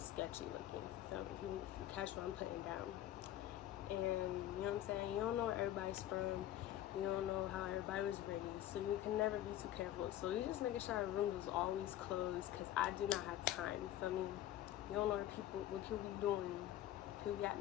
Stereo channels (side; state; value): right; quieter; 12.8 dB